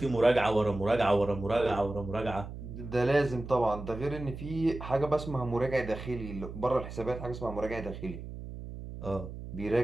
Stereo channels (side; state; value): right; noise; hum, 10 dB below the sound